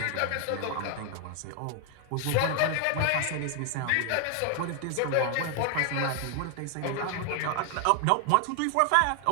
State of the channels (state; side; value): different; both; correlation 0.00